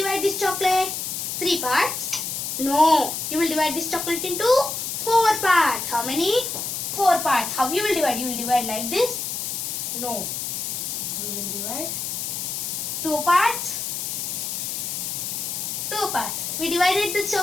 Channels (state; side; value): noise; left; hiss, 3 dB below the sound